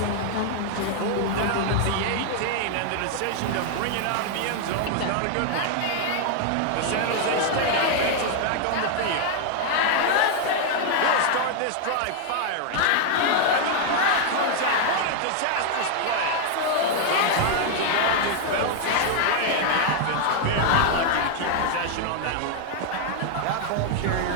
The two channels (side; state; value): both; different; correlation 0.00